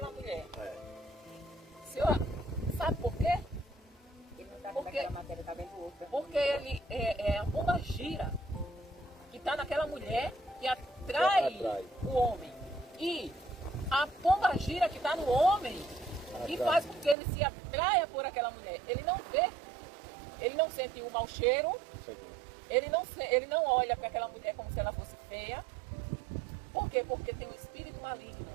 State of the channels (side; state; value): left; drops out; at 17.2 s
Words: mulher. O senhor sabe por quê? Ele não está vendo aquela matéria, está vendo outra. Porque ele é a pombagira que está naquela mulher que atrai o homem. E a pombagira que está no homem que faz com que ele se atraia por aquela mulher. Ele não vê, ele não sente o mau cheiro, ele não olha para aquela mulher como se ela fosse feia. Por quê? Porque tem um espírito maligno